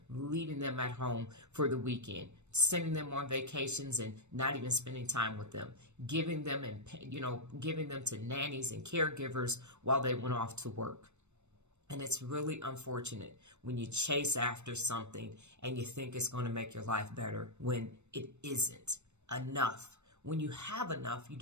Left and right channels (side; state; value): left; late; 0.82 ms